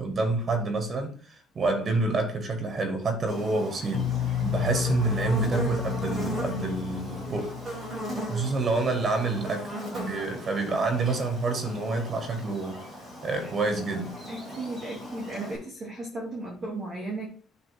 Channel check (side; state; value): both; normal; correlation 0.58